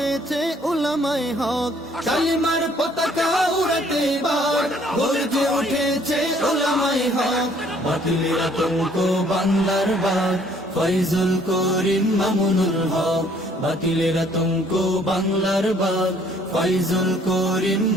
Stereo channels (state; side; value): normal; both; correlation 0.61